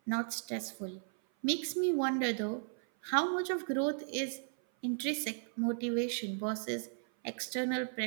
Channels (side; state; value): left; silent; 54 dB below the other